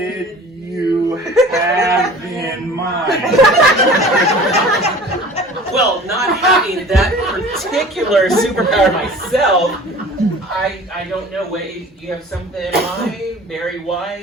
you have in mind? Well, not having that particular superpower myself, I don't know. Wait, you have something in mind? Barry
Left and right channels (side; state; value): both; normal; correlation 0.44